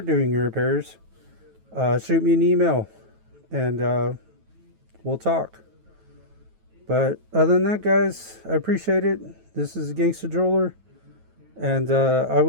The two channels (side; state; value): left; late; 9.2 ms